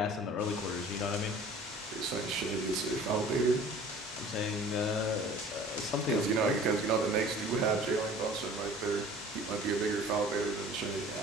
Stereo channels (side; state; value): both; normal; correlation 0.47